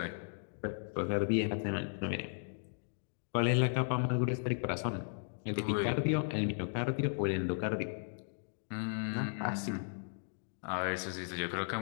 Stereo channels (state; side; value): silent; right; digital silence